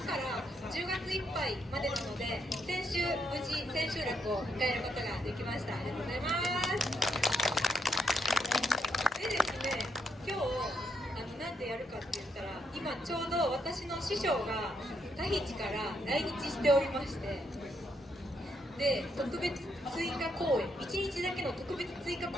から10月いっぱいまでなので、先週無事千秋楽を迎えることができました。ありがとうございます。でですね、今日なんでやるかって言ったら、今ちょうど私の師匠がタヒチから来日しておりまして、で特別追加公演、1日だけの特別追加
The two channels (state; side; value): normal; both; correlation 0.77